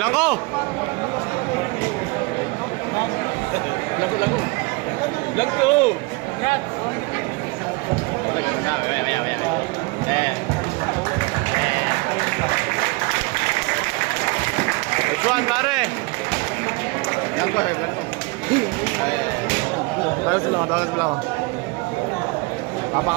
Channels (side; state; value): left; quieter; 26.4 dB